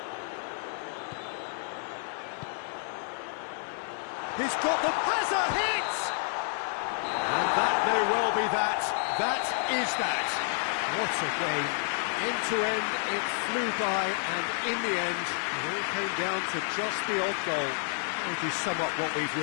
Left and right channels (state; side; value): silent; right; 58 dB below the other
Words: He's got the has a hit! And that may well be that. That is that. What a game. End to end, it flew by, and in the end, it all came down to just the odd goal. How would you sum up what we've